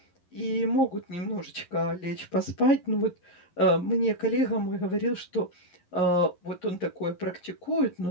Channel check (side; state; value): right; late; 11 ms